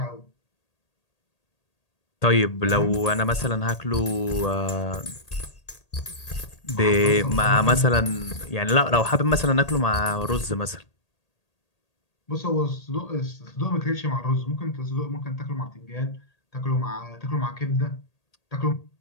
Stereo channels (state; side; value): late; right; 1.8 ms